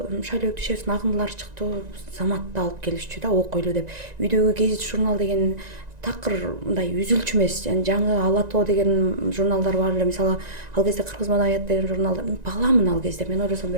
Шайлоо Дүйшевдин Агындылар чыктı, Заматты алып келишчү да, окуйлу деп. Үйдөгү гезит журнал деген такыр мындай үзүлчү эмес, жаңы Ала тоо деген журналдар бар эле. Мисалы ал кезде Кыргыз маданият деген журналдар, баламын ал кезде, мен ойлосом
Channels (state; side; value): late; left; 1.9 ms